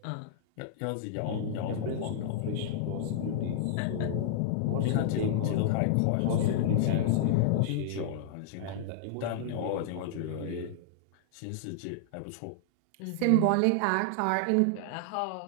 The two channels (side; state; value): both; different; correlation -0.01